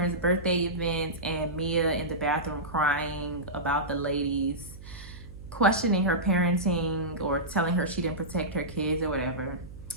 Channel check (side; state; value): right; noise; hum, 15 dB below the sound